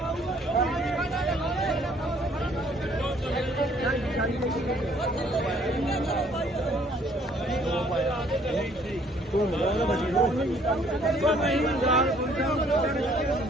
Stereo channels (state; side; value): normal; both; correlation 0.61